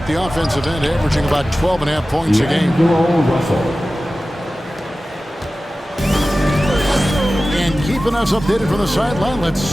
the offensive end, averaging about 12.5 points a game. And keeping us updated from the sideline, let's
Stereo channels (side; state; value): both; normal; correlation 0.96